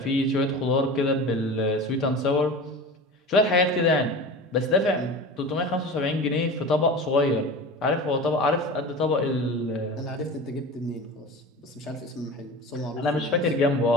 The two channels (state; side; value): normal; both; correlation 0.33